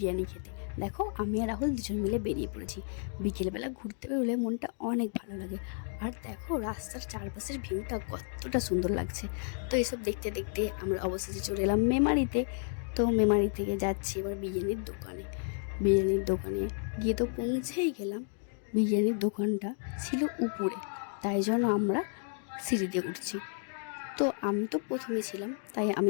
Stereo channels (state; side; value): silent; right; 55 dB below the other